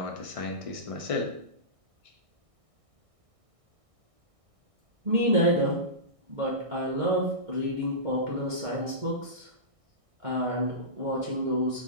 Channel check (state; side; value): late; left; 1.6 ms